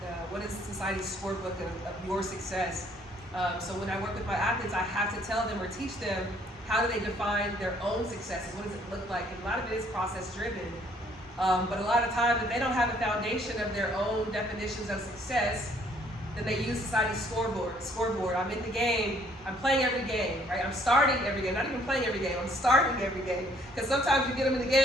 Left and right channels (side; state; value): both; normal; correlation 0.63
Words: What is the society's scorebook of your success? So when I work with my athletes, I have to tell them or teach them how do they define their own successes? What does it look like? And a lot of it is process driven. But a lot of times, if they don't have a foundation of their own definitions of success, then they use society's scoreboard. I'm in the game. I'm playing every game, right? I'm starting every game. Not even playing every game. I'm starting every game. Because sometimes you get them in the